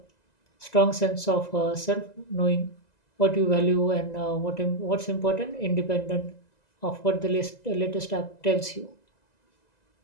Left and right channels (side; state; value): right; late; 2.0 ms